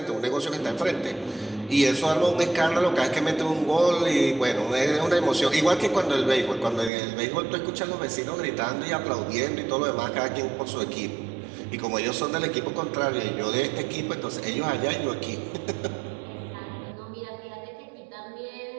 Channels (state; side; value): drops out; left; at 6.9 s